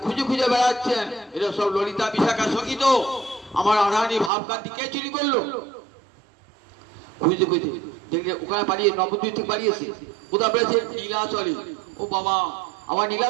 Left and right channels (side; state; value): left; drops out; at 4.3 s